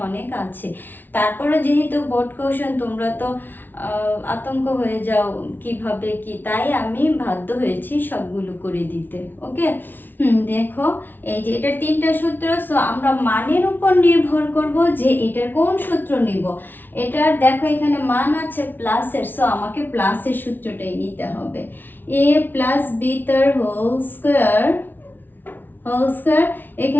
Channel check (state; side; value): late; right; 0.091 ms